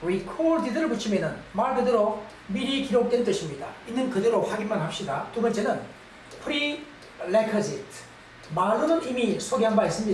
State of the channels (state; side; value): identical; both; correlation 1.00